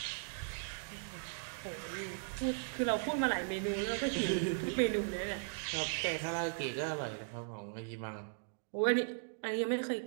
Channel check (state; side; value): silent; left; digital silence